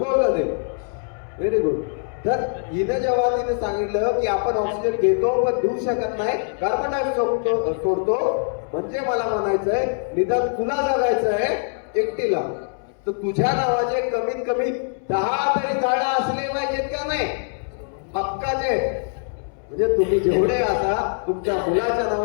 ते. Very good. तर हिने जेव्हा तिने सांगितलं की आपण ऑक्सिजन घेतो पण देऊ शकत नाही, कार्बन डायऑक्साईड सोडतो, म्हणजे मला म्हणायचंय निदान तुला जगायचंय एकटीला, तर तुझ्या नावाचे कमीत कमी 10 तरी झाडं असले पाहिजेत का नाही? हक्काचे. म्हणजे तुम्ही जेवढे असा तुमच्या मुलाच्या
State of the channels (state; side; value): silent; right; 63 dB below the other